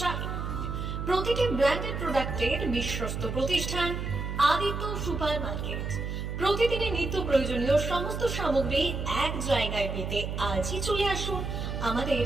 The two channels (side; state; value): right; noise; hum, 4 dB below the sound